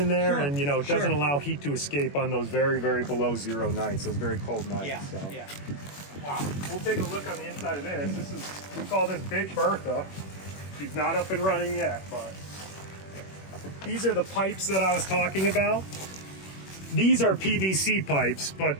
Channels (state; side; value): late; right; 21 ms